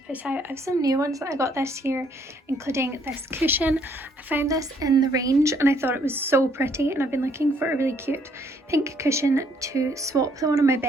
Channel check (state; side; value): normal; both; correlation 0.66